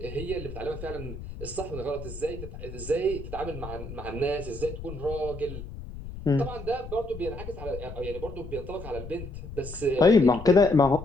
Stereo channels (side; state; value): left; noise; rumble, 11 dB below the sound